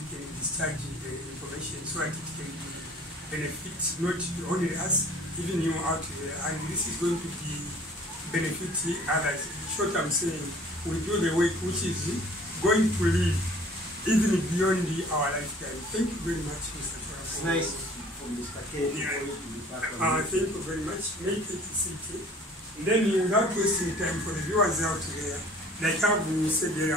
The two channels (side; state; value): both; normal; correlation 0.51